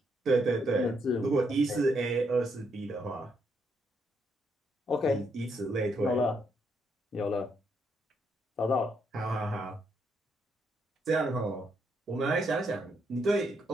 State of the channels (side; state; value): both; normal; correlation 0.76